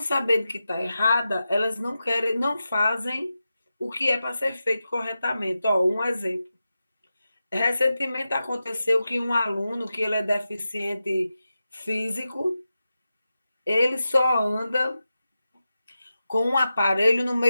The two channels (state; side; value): inverted; both; correlation -0.91